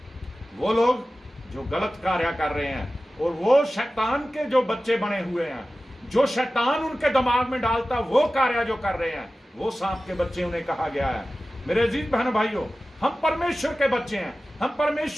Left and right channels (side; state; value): both; normal; correlation 0.95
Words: वो लोग जो गलत कार्य कर रहे हैं, और वो शैतान के जो बच्चे बने हुए हैं, जो शैतान उनके दिमाग में डालता, वो कार्य जो कर रहे हैं, वो सांप के बच्चे उन्हें कहा गया है। मेरे अजीज बहन भाइयों, हम परमेश्वर के बच्चे हैं, हम